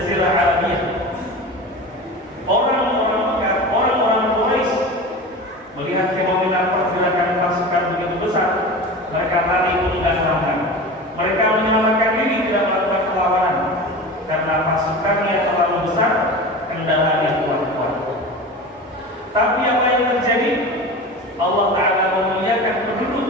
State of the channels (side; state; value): both; normal; correlation 0.31